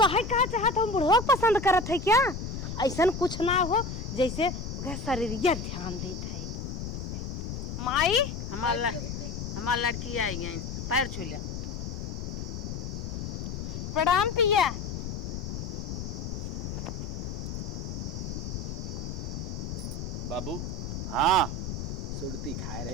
कहे कहा चाहता हूँ बुढ़वा को पसंद करत है क्या। ऐसा कुछ ना हो जैसे ओकरा शरीरिया ध्यान देत है। माई हमार लड़की आई गई पैर छू लिया। प्रणाम पिया। बाबू हाँ सुरती खाए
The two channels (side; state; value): left; noise; rumble, 5 dB below the sound